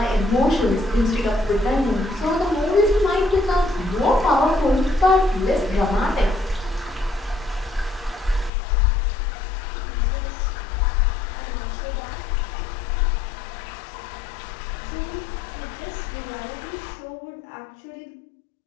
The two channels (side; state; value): right; drops out; at 8.5 s